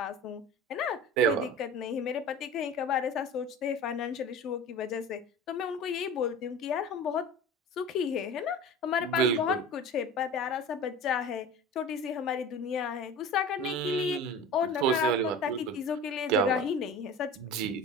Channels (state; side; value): normal; both; correlation 0.36